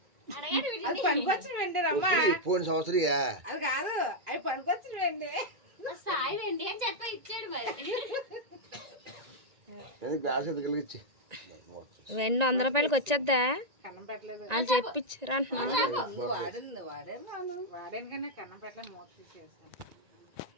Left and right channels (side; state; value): left; late; 1.9 ms